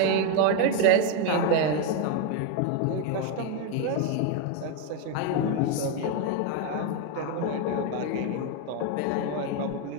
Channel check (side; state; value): both; different; correlation 0.02